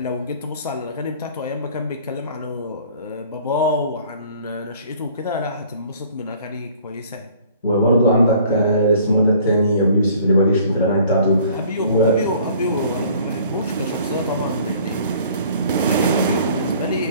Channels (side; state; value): both; inverted; correlation -0.53